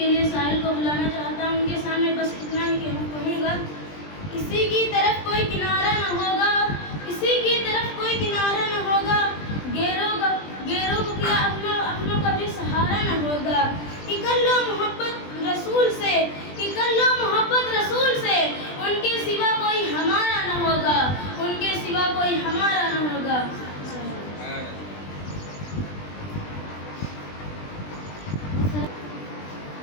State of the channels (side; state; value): right; late; 20 ms